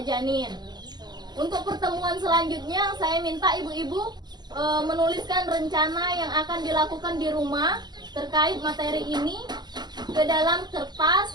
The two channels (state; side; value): late; left; 0.20 ms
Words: janin. Untuk pertemuan selanjutnya, saya minta ibu-ibu menuliskan rencana yang akan dilakukan di rumah terkait materi ini ke dalam